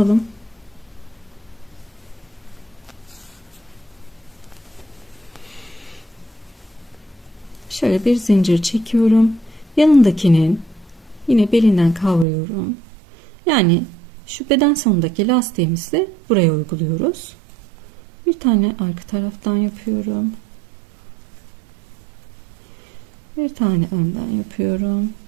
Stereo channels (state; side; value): drops out; left; at 12.2 s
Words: Şöyle bir zincir çekiyorum. Yanındakinin yine belinden kavruyorum. Yani şu beden sonundaki lastiğimizi buraya uyguluyoruz. Bir tane arka taraftan yapıyorum. Bir tane önden yapıyorum.